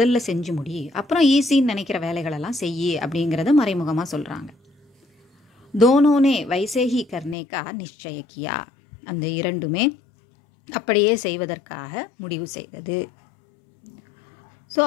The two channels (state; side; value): drops out; right; at 7.4 s